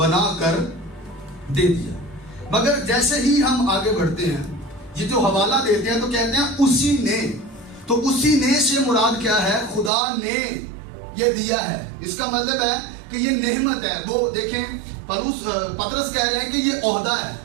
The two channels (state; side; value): drops out; left; at 9.9 s